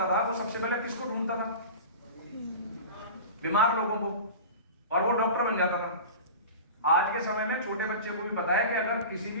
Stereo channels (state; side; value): inverted; both; correlation -0.33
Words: था वो सबसे पहले किसको ढूंढता था? बीमार लोगों को, और वो डॉक्टर बन जाता था। आज के समय में छोटे बच्चे को भी पता है कि अगर किसी